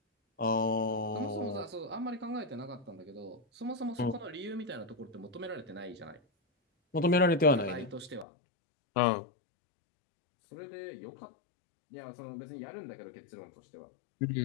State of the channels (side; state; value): right; drops out; at 8.2 s